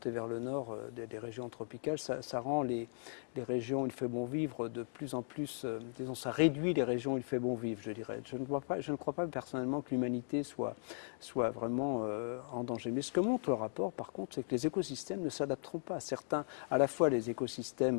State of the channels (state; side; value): silent; right; digital silence